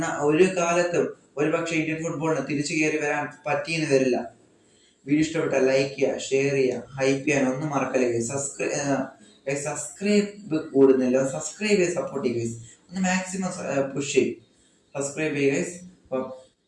ഒരു കാലത്തും ഒരുപക്ഷെ ഇന്ത്യൻ ഫുട്ബോളിന് തിരിച്ചു കയറി വരാൻ പറ്റിയെന്ന് വരില്ല. വീഡിയോ ഇഷ്ടപ്പെട്ടാൽ ലൈക്ക് ചെയ്യുക, ഷെയർ ചെയ്യുക, ഹൈപ്പ് ചെയ്യാൻ ഒന്നും മറക്കല്ലേ. സബ്സ്ക്രൈബ് കൂടുന്നില്ല, സബ്സ്ക്രൈബ് ചെയ്ത് സപ്പോർട്ട് ചെയ്യുക. ഒന്ന് മാക്സിമം പുഷ് ചെയ്യും. സബ്സ്ക്രൈബ് ചെയ്യുക.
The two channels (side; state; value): both; identical; correlation 1.00